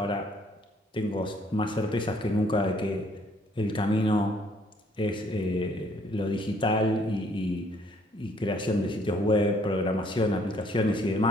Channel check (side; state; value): both; normal; correlation 0.63